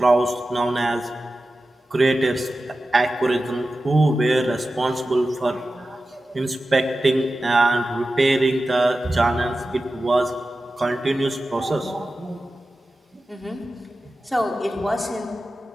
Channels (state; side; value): normal; both; correlation 0.94